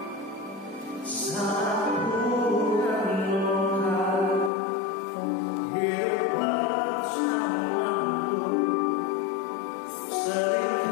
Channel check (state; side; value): drops out; right; at 4.5 s